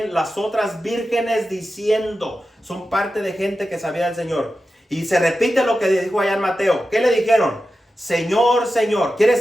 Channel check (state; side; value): normal; both; correlation 0.92